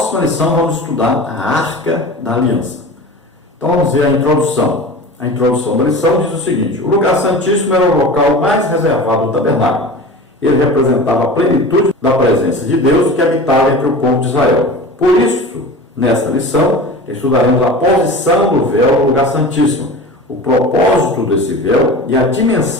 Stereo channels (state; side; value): normal; both; correlation 0.35